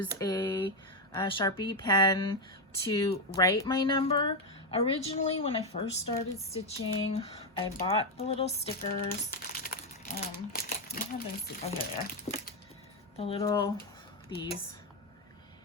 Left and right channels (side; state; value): both; normal; correlation 0.06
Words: a Sharpie pen to write my number. Originally, when I first started stitching, I bought the little stickers. I have them. Oh, here they are. These.